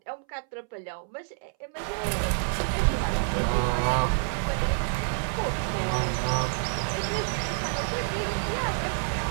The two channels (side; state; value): left; silent; 59 dB below the other